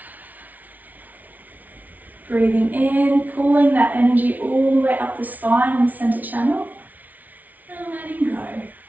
Breathing in, pulling that energy all the way up the spine and the center channel, and letting go.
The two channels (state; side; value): late; left; 0.077 ms